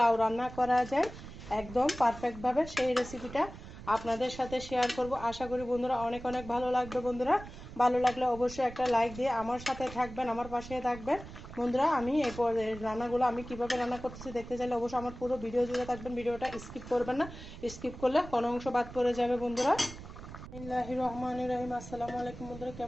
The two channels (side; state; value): right; noise; rumble, 14 dB below the sound